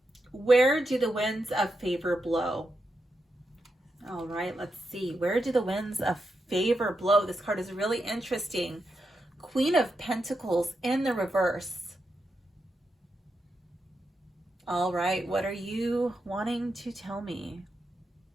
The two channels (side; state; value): both; normal; correlation 0.86